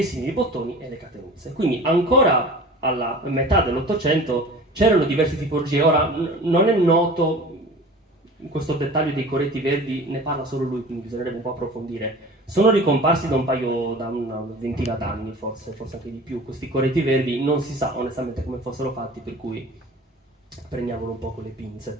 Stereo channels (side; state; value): both; normal; correlation 0.40